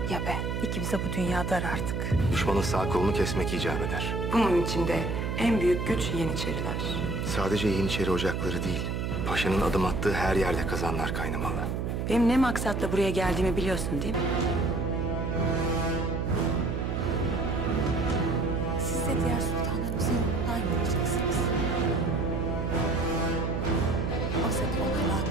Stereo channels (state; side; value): noise; right; hum, 1 dB below the sound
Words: ya ben. İkimize bu dünya dar artık. Düşmanın sağ kolunu kesmek icap eder. Bunun içinde en büyük güç Yeniçeriler. Sadece Yeniçeri ocakları değil, paşanın adım attığı her yerde kazanlar kaynamalı. Benim ne maksatla buraya geldiğimi biliyorsun değil mi? Siz de diğer sultanlarımızın yolundan yürüyeceksiniz. Oysa ki onların